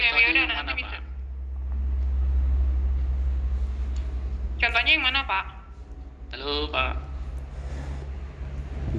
udah nanti bisa. Contohnya yang mana Pak? Halo Pak.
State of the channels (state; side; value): identical; both; correlation 1.00